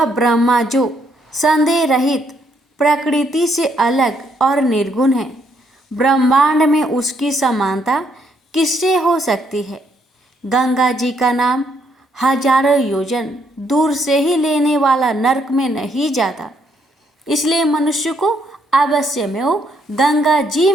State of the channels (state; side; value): normal; both; correlation 0.72